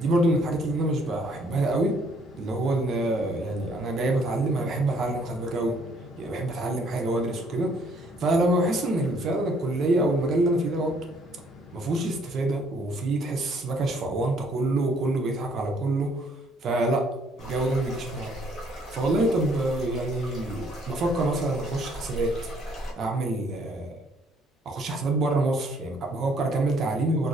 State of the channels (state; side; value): normal; both; correlation 0.64